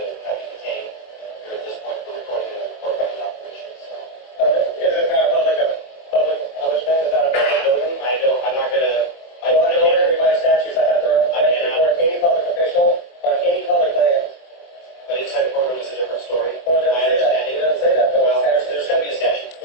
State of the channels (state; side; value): late; right; 23 ms